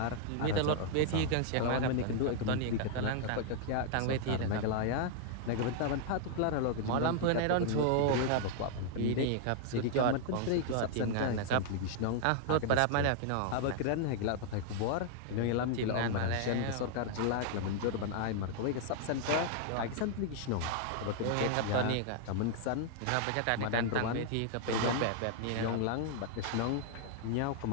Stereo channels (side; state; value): both; different; correlation 0.00